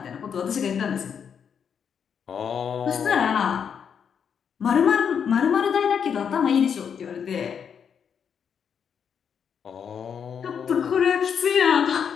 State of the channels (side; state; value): right; quieter; 7.4 dB